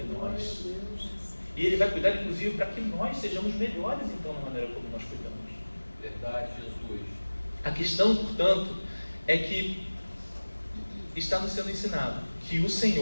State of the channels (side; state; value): both; inverted; correlation -1.00